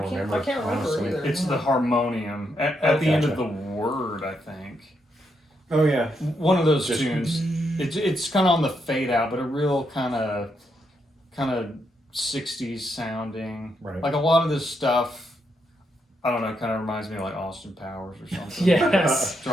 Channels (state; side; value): normal; both; correlation 0.80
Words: remember, I can't remember honestly. either. It's the harmonium at the end of the word, I think. Oh yeah. One of those Just- tunes. It's kind of on the fade out, but a real kind of 60s sounding. Right. Like a lot of this stuff, I don't know, kind of reminds me of Austin Powers or something. Yes.